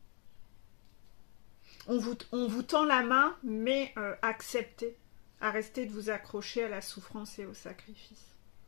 On vous tend la main, mais acceptez, arrêtez de vous accrocher à la souffrance et au sacrifice.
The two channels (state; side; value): quieter; right; 35.6 dB